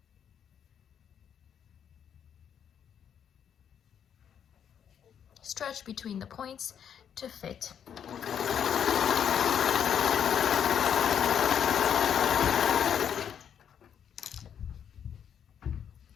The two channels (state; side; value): quieter; right; 8.5 dB